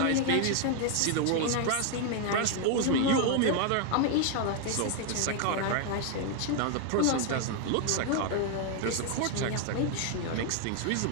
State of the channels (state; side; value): different; both; correlation 0.01